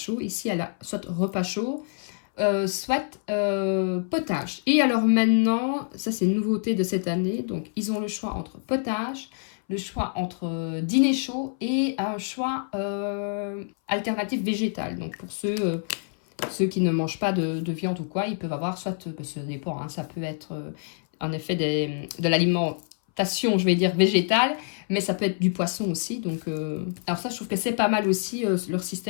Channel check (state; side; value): silent; right; 61 dB below the other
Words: Ici, elle a soit repas chaud, soit potage. Et alors maintenant, ça c'est une nouveauté de cette année. Donc ils ont le choix entre potage, le choix entre dîner chaud et un choix alternatif végétal. Donc pour ceux qui ne mangent pas de viande ou quoi, ils peuvent avoir soit, ça dépend, hein, ça peut être en effet de l'alimentation, je vais dire végétale, mais ça peut être du poisson aussi. Donc alors ça, je trouve que c'est pas mal aussi leur